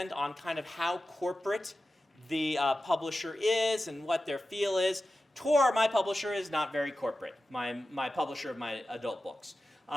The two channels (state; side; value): normal; both; correlation 0.93